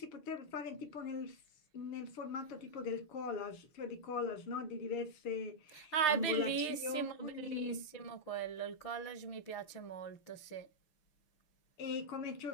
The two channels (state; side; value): late; right; 6.5 ms